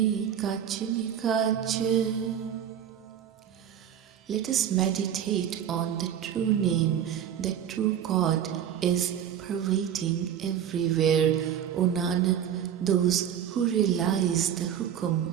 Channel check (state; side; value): quieter; left; 9.4 dB